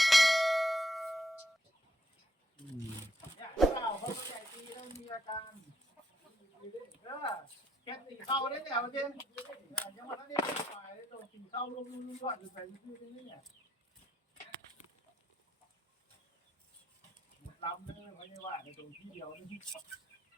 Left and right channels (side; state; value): both; normal; correlation 0.75